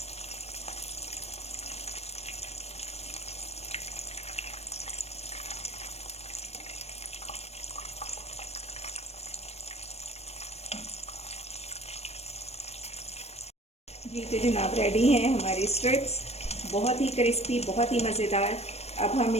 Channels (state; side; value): late; right; 0.31 ms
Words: जी तो जनाब रेडी हैं हमारी स्ट्रिप्स, बहुत ही क्रिस्पी, बहुत ही मज़ेदार। अब हम